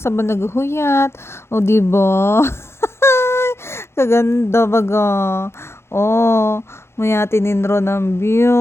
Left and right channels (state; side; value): late; right; 0.12 ms